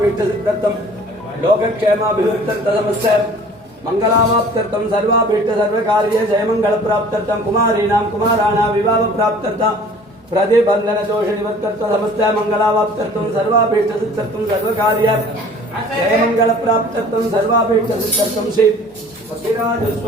சித்தர்த்தம் லோகக்ஷேமாபிவிருத்தர்த்த சமஸ்த மங்களாவாப்தர்த்தம் சர்வாபீஷ்ட சர்வகாரிய ஜெயமங்கள பிராப்தர்த்தம் குமாரீணாம் குமாராணாம் விவாஹ பிராப்தர்த்தம் प्रतिबंधन दोष निवर्तर्थ समस्त मंगलावाप्तर्थ सर्वाभीष्ट सिद्धर्थ सर्वकार्य जय मंगल प्राप्तर्थ सर्वाभीष्ट सिद्धर्थ श्री पक्षिराज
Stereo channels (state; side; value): normal; both; correlation 0.49